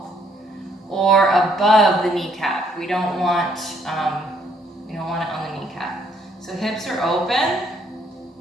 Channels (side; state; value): both; normal; correlation 0.68